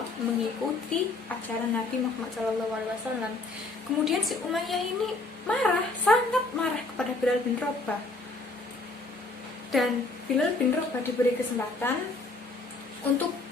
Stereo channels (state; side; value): quieter; right; 3.3 dB